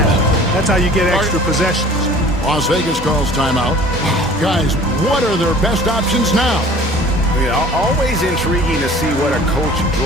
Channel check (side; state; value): both; normal; correlation 0.47